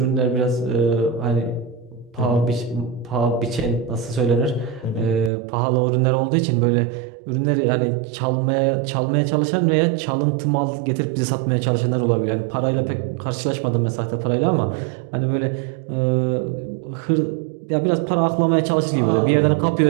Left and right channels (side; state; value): left; drops out; at 5.3 s